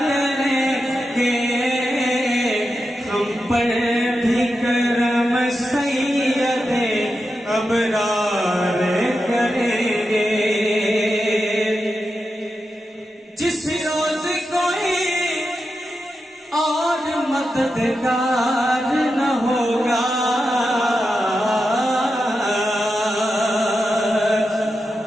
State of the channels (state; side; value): normal; both; correlation 0.89